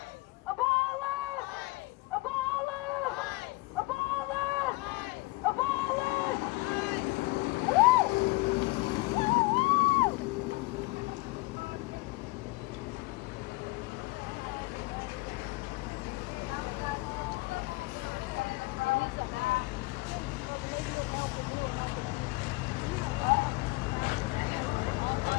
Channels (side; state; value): right; quieter; 23.7 dB